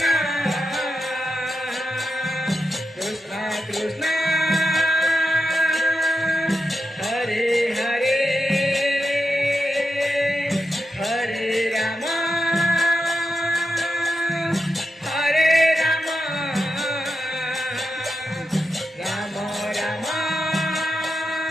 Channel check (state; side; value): normal; both; correlation 0.88